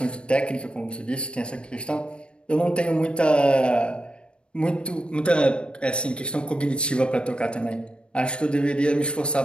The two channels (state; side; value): late; right; 0.056 ms